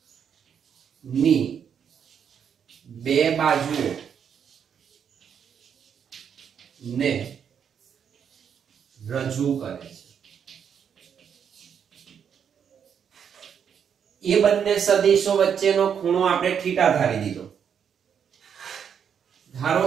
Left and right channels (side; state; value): left; quieter; 7.8 dB